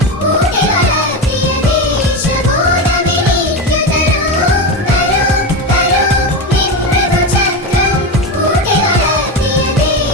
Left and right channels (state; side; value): normal; both; correlation 0.18